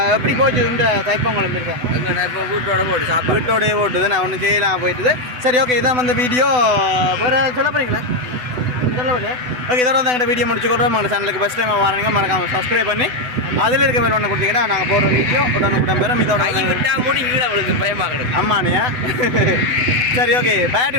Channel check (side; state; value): left; late; 8.0 ms